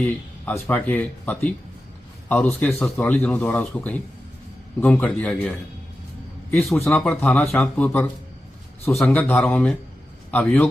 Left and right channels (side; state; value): both; normal; correlation 0.92